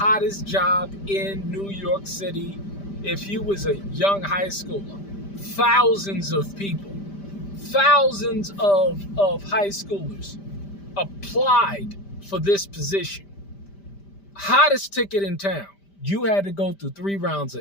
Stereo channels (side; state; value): right; late; 5.1 ms